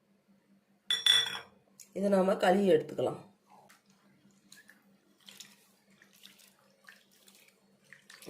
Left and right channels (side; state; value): both; identical; correlation 1.00